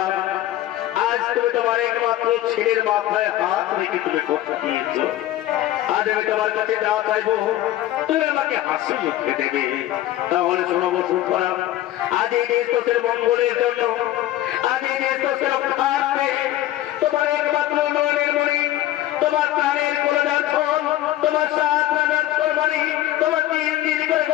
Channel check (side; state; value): right; quieter; 14.2 dB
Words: আজ তুমি তোমার একমাত্র ছেলের মাথায় হাত রেখে তুমি কথা দিয়েছ আজ আমি তোমার কাছে যা চাইবো তুমি আমাকে হাসি মুখে দেবে তাহলে শোনো বসুন্ধরা আজ এই দেশের মঙ্গলের জন্য আজ এই দেশের রক্ষার্থে তোমার একমাত্র নয়নের মণি তোমার প্রাণের কলজার ফল তোমার সাত রাজার ফলবাড়ি তোমার তিন দিন করে